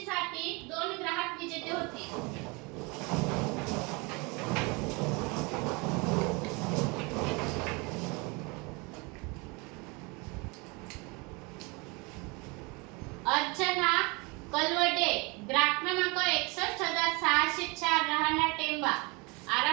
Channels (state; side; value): quieter; left; 28.0 dB